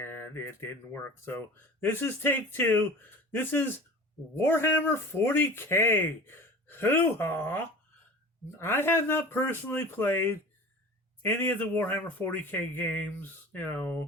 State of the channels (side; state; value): both; normal; correlation 0.38